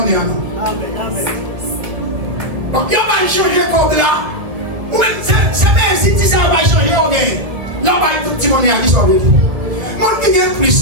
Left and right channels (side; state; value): left; late; 1.9 ms